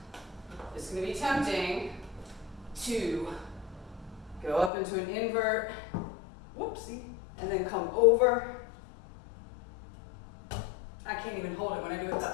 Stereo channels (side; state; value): right; drops out; at 4.7 s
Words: it's going to be tempting to go up into an invert, whoopsie, and then come over. I can't even hold it when I do it